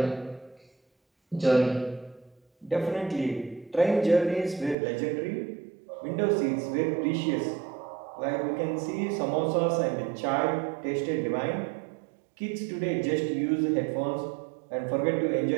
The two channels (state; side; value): drops out; left; at 4.8 s